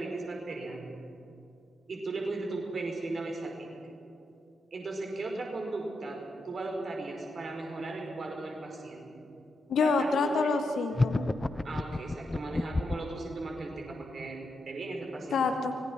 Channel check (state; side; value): normal; both; correlation 0.84